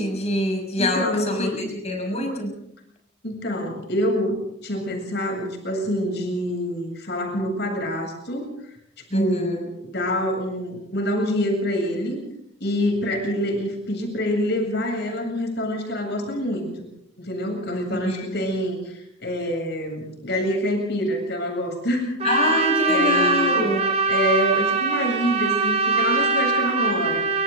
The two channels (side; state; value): both; normal; correlation 0.18